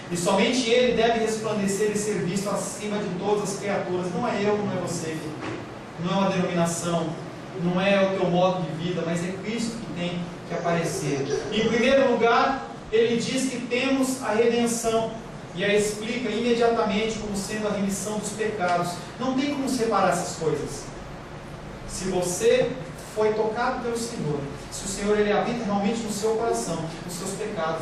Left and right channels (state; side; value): identical; both; correlation 1.00